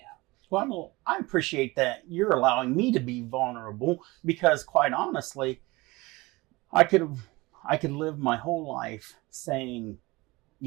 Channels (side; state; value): left; quieter; 22.4 dB